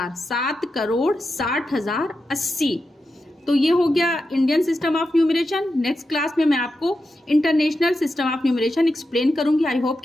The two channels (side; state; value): both; normal; correlation 0.89